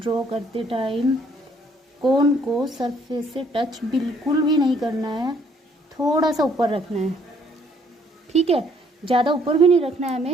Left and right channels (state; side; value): normal; both; correlation 0.65